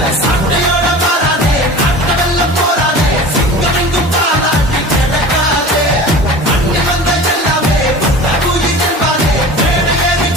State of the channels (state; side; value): normal; both; correlation 0.37